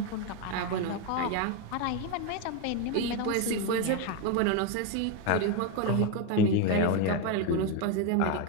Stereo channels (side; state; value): both; different; correlation 0.02